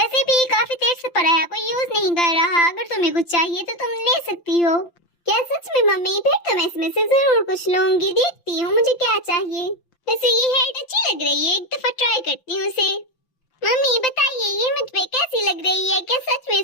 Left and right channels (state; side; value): late; right; 5.9 ms